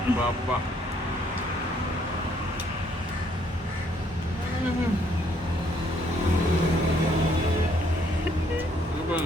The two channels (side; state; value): both; normal; correlation 0.67